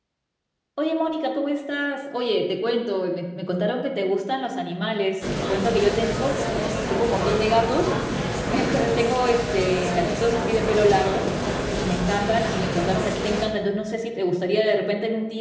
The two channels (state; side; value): identical; both; correlation 1.00